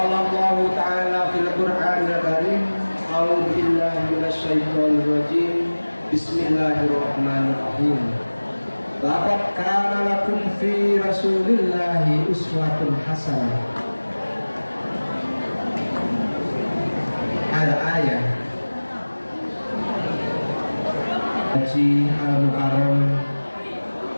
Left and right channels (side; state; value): both; inverted; correlation -1.00